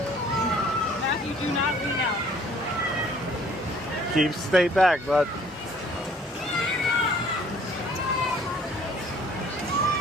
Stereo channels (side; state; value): both; normal; correlation 0.56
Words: Matthew, do not lean out. Stay back, bud.